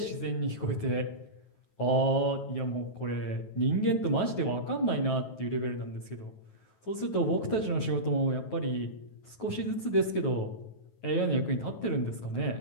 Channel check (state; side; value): late; right; 9.3 ms